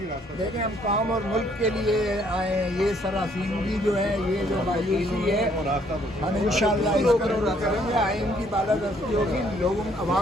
دیکھیں ہم قوم اور ملک کے لیے آئے ہیں، یہ سراسیمگی جو ہے، یہ جو مایوسی ہے، ہم انشاءاللہ اس کو دور کریں گے۔ آئین کی بالادستی ہوگی، لوگوں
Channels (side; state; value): both; normal; correlation 0.65